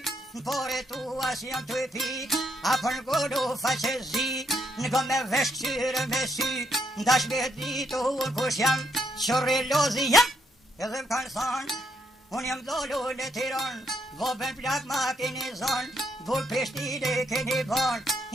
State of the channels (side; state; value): both; normal; correlation 0.75